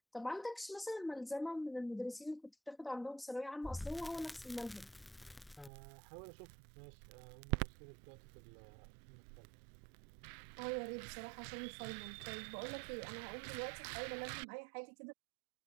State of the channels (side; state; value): left; drops out; at 5.7 s